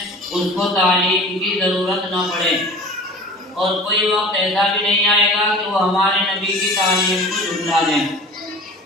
उसको तालीम की ज़रूरत न पड़े, और कोई वक्त ऐसा भी नहीं आएगा कि वो हमारे नबी की तालीम को झुठला दें।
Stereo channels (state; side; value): normal; both; correlation 0.40